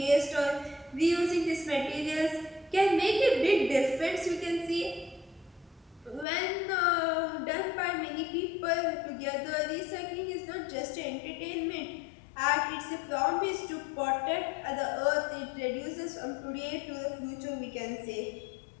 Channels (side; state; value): right; drops out; at 6.2 s